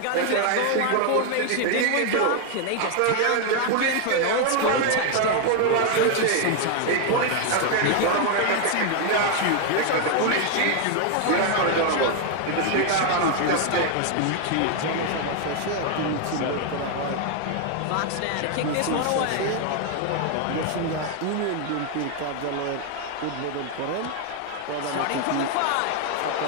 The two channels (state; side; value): different; both; correlation 0.01